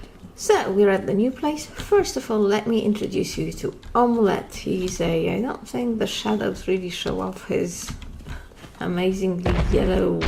So, we're at the new place. First of all, let me introduce you to Omelette. I don't think the shadows really show off his amazingly yellow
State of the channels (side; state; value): both; identical; correlation 1.00